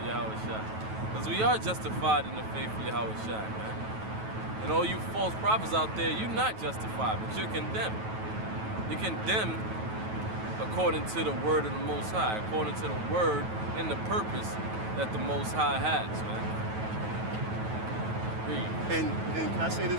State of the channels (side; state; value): left; late; 9.2 ms